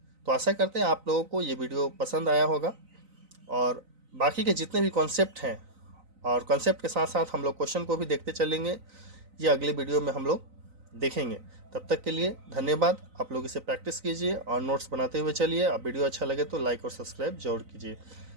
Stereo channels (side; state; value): left; late; 3.9 ms